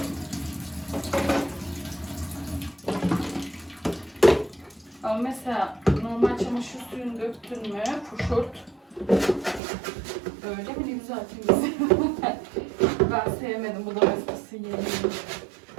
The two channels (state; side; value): drops out; left; at 9.6 s